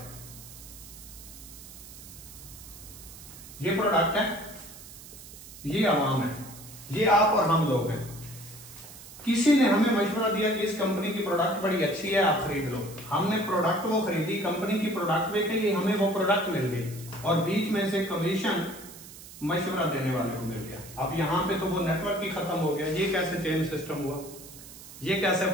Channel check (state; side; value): noise; right; hiss, 16 dB below the sound